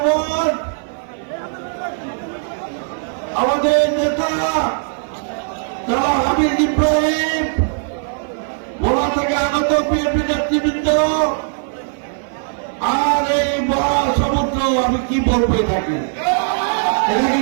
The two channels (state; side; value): silent; left; 56 dB below the other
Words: আমাদের নেতা যারা হামিদ ইব্রাহিম ভোলা থেকে আগত বিএনপি নেতৃবৃন্দ আর এই মহাসমুদ্র, আমি কি বলবো এটাকে, এটা কি